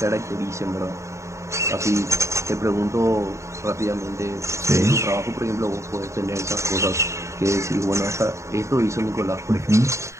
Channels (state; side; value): late; left; 0.14 ms